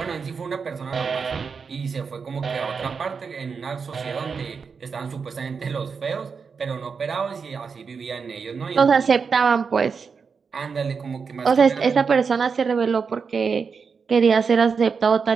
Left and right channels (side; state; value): left; quieter; 5.6 dB